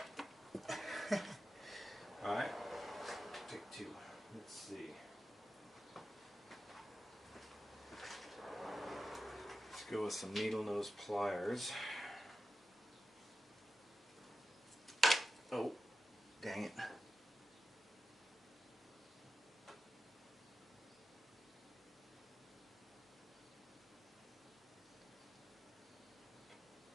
Alright, take two. Let's see. Let's go with some needle nose pliers. Oh, dang it.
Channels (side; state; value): both; normal; correlation 0.93